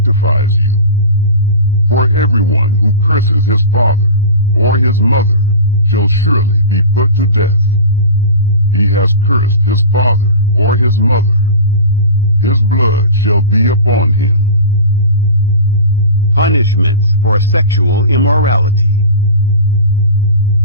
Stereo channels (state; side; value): inverted; both; correlation -0.34